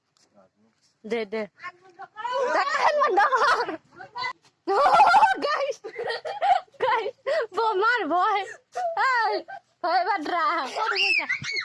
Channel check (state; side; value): identical; both; correlation 1.00